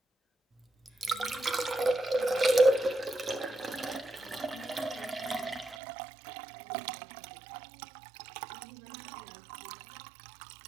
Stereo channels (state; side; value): drops out; left; at 5.8 s